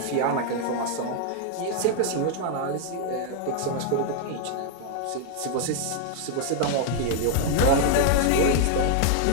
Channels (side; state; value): both; different; correlation 0.00